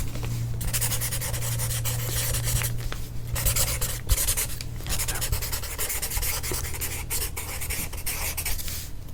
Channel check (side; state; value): both; identical; correlation 1.00